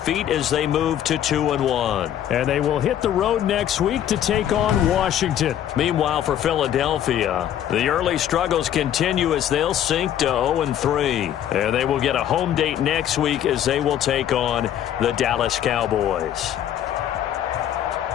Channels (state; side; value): quieter; right; 10.7 dB